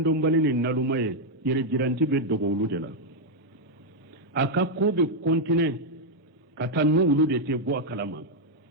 mbalini nalumaye yere jiranti be dogo uludela aka kobe kontine katanu ulude te bo akalama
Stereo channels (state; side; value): normal; both; correlation -0.01